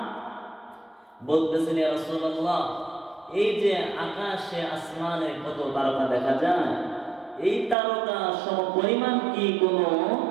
বলতেছেন, ইয়া রাসূলুল্লাহ, এই যে আকাশে আসমানে কত তারকা দেখা যায়, এই তারকা সম পরিমাণ কি কোন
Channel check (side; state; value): left; drops out; at 7.8 s